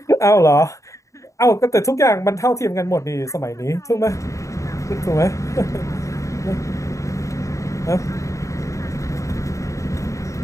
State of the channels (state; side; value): late; right; 0.15 ms